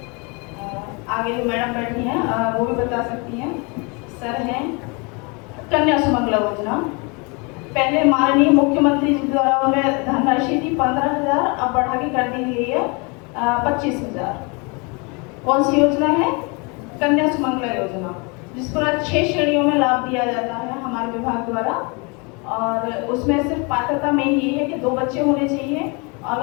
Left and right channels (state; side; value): quieter; right; 30.7 dB